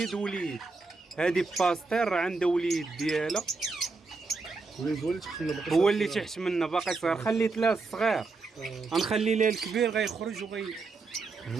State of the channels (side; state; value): left; quieter; 4.0 dB